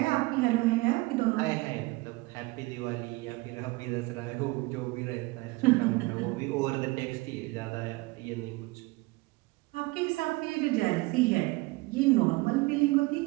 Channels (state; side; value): quieter; left; 23.0 dB